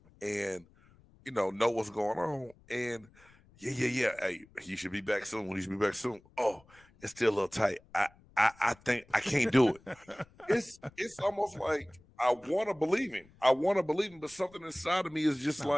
and know what's going on. And yeah. Hey, you should be back soon. You should be back soon. Oh, it's still a little tight. I think I can't do it. It's almost like I want to believe him. But something inside of me is just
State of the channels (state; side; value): noise; left; rumble, 28 dB below the sound